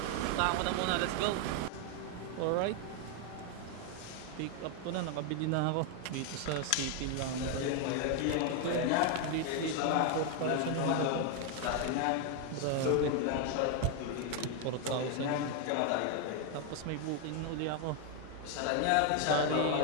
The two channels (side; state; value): both; different; correlation 0.01